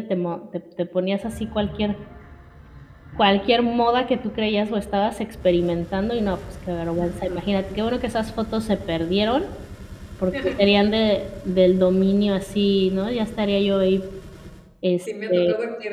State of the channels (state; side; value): identical; both; correlation 1.00